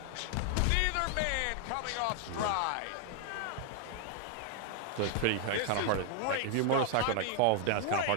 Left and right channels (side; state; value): both; different; correlation 0.00